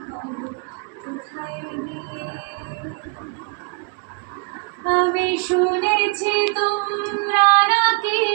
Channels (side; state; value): left; quieter; 34.7 dB